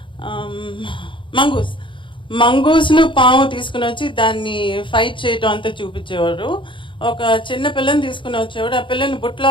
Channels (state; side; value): late; right; 0.24 ms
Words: మంగూస్ను పాము తీసుకుని వచ్చి దాన్ని ఫైట్ చేయటం అంతా చూపించేవారు. ఒక చిన్న పిల్లని తీసుకుని వచ్చేవాడు, ఆ పిల్లని బుట్ట